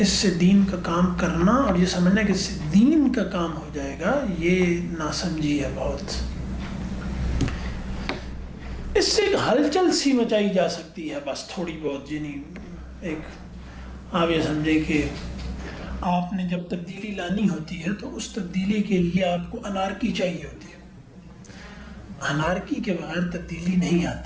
سے دین کا کام کرنا اور یہ سمجھنا کہ اس سے دین کا کام ہو جائے گا، یہ ناسمجھی ہے بہت. اس سے ایک ہلچل سی مچائی جا سکتی ہے بس تھوڑی بہت. یعنی ایک آپ یہ سمجھے کہ آپ نے جب تبدیلی لانی ہوتی ہے تو اس تبدیلی کے لیے آپ کو انارکی چاہیے ہوتی ہے. انارکی کے بغیر تبدیلی نہیں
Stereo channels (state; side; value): identical; both; correlation 1.00